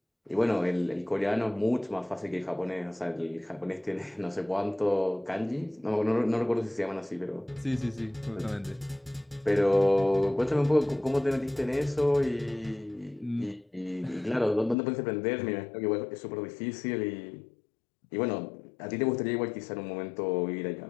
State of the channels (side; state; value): right; drops out; at 14.8 s